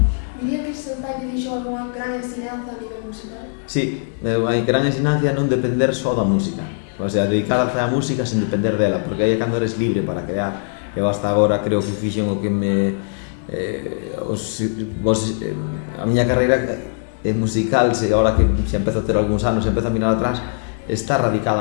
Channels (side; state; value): right; silent; digital silence